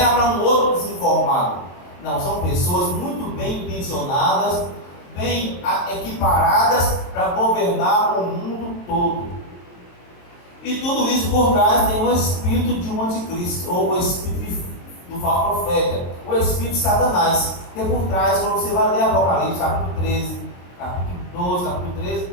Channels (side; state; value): right; late; 23 ms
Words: para um outro desinformado. Não, são pessoas muito bem intencionadas, bem equiparadas para governar o mundo todo. E tudo isso por trás tem o espírito de um anticristo, ou o espírito do falso profeta, o espírito de Satanás, que é por trás, quando você vai ler Apocalipse, capítulo 13, capítulo 12, capítulo